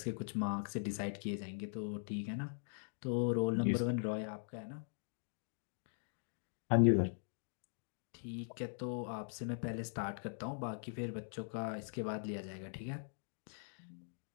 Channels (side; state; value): right; silent; digital silence